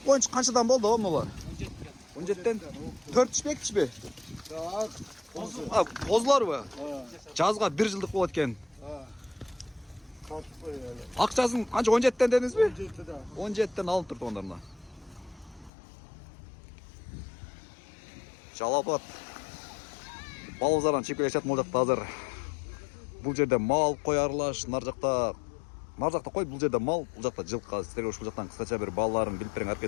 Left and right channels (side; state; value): right; drops out; at 15.7 s